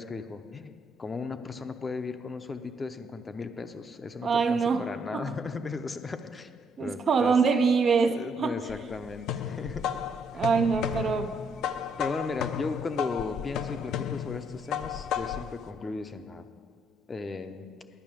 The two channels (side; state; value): both; normal; correlation 0.72